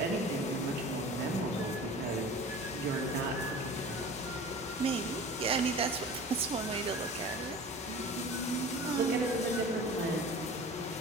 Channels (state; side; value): normal; both; correlation 0.39